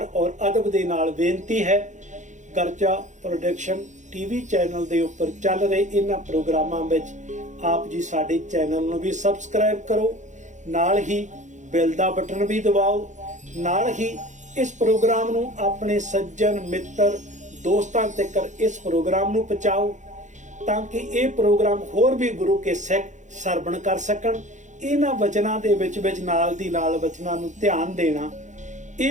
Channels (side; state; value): left; late; 0.35 ms